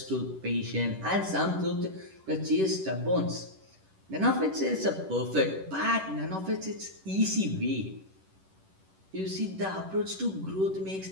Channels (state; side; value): late; left; 10 ms